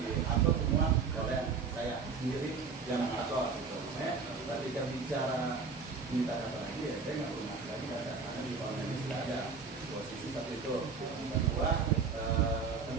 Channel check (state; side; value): quieter; left; 5.1 dB